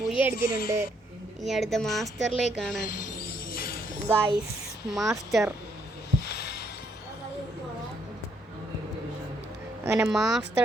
ബുയ അടിച്ചിട്ടുണ്ട്. ഇനി അടുത്ത മാസ്റ്ററിലേക്കാണ് ഗൈസ്. മാസ്റ്റർ അങ്ങനെ മാസ്റ്റർ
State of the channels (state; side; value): normal; both; correlation 0.72